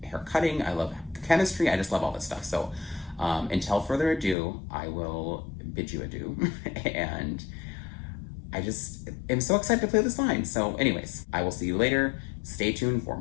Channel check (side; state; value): right; drops out; at 4.4 s